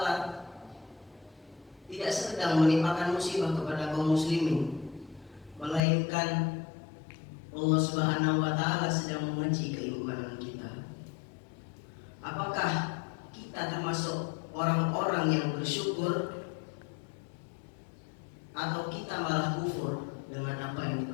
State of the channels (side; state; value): right; drops out; at 5.8 s